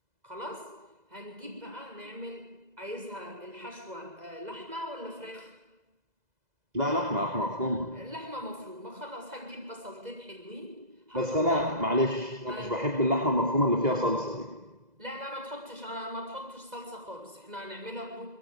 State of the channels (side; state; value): left; late; 2.0 ms